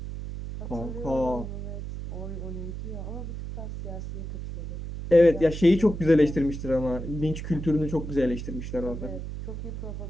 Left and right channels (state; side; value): noise; right; hum, 7 dB below the sound